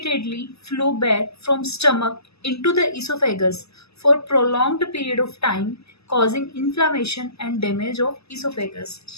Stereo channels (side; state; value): right; late; 0.79 ms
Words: flow back from stomach into the oesophagus for prolonged period of time causing inflammation and damage of oesophagus.